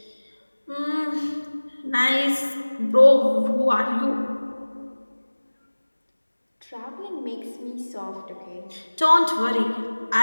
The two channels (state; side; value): inverted; both; correlation -1.00